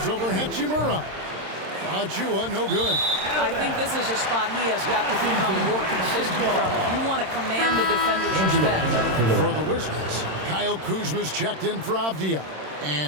over Hachimura. Achua, no good. I think this is a spot he has got to become more consistent from if you want to command the defender's respect. For the Wizards, Kyle Kuzma's checked in for Avdia.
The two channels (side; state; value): left; late; 26 ms